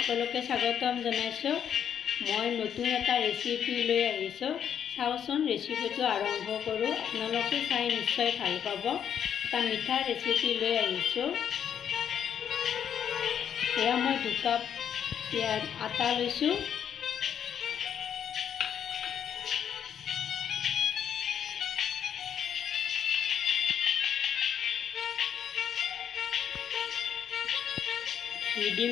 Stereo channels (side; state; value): right; quieter; 8.7 dB